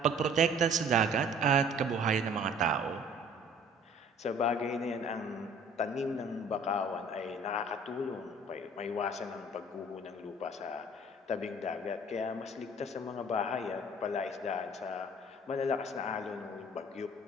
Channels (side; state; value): both; normal; correlation 0.52